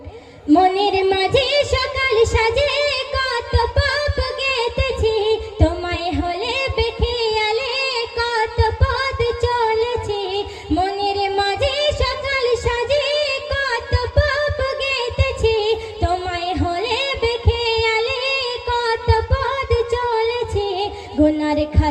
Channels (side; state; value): both; identical; correlation 1.00